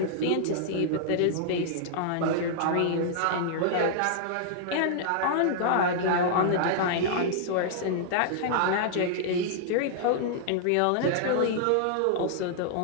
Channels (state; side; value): different; both; correlation -0.01